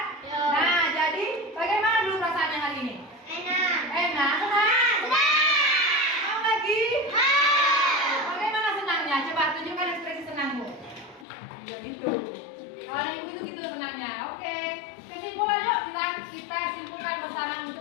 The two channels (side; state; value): right; drops out; at 11.2 s